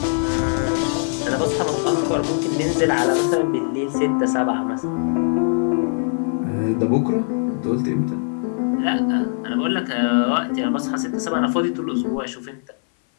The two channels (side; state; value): right; silent; 59 dB below the other